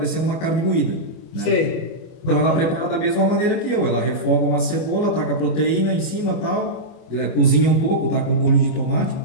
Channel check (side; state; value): right; late; 25 ms